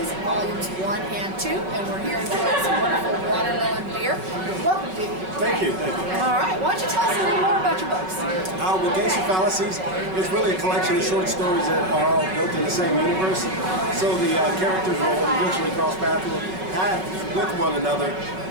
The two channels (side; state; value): left; late; 5.3 ms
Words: Volumes 1 and 2, and we're here enjoying some wonderful watermelon beer. Welcome, Dee. Thank you, thank you. All right, why don't you tell us a little more about your books? Well, Gangster Fallacies is really a collection of short stories that are all built in the same universe. So the characters will eventually cross paths with one another,